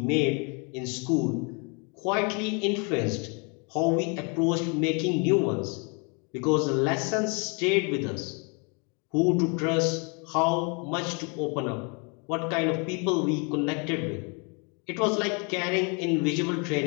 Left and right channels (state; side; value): quieter; right; 33.8 dB